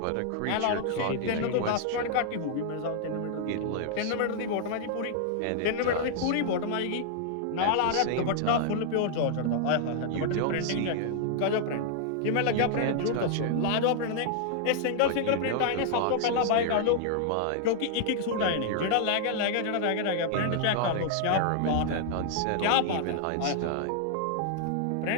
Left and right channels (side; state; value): both; different; correlation -0.01